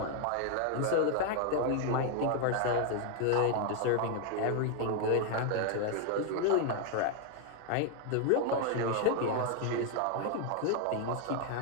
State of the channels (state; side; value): different; both; correlation 0.01